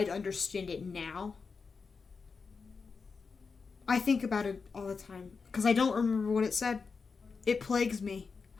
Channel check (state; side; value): quieter; right; 5.0 dB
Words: understand it now. I think about it all the time. Because I don't remember what it said. It plagues me.